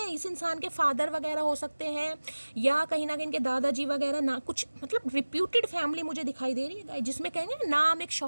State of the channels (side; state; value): both; inverted; correlation -1.00